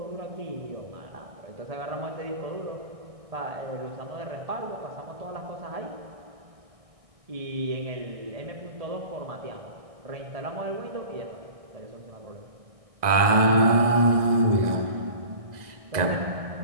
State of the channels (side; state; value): left; late; 2.0 ms